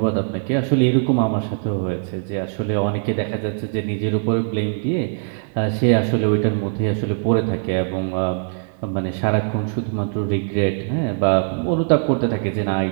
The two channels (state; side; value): silent; left; digital silence